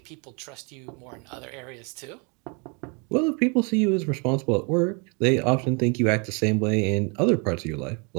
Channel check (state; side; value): quieter; left; 33.5 dB